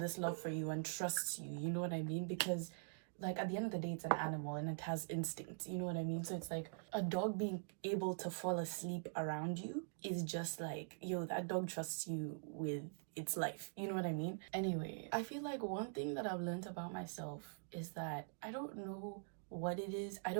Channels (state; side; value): silent; left; digital silence